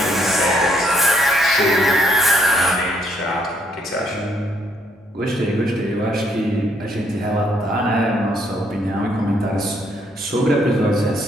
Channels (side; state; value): both; normal; correlation 0.69